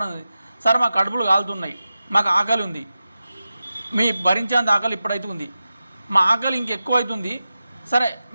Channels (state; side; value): inverted; both; correlation -0.92